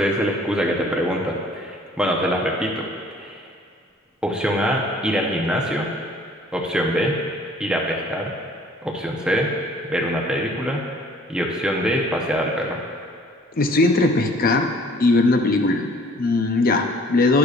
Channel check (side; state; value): both; normal; correlation 0.55